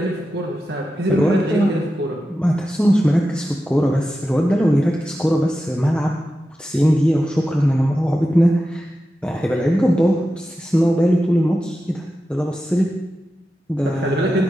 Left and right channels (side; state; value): both; normal; correlation 0.92